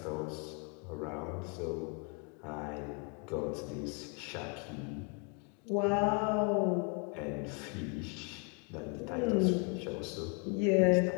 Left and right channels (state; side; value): quieter; right; 35.7 dB